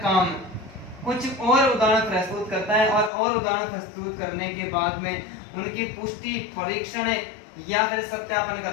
काम। कुछ और उदाहरण प्रस्तुत करता है और उदाहरण प्रस्तुत करने के बाद में उनकी पुष्टि, परीक्षण या फिर सत्यापन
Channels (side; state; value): right; drops out; at 3.1 s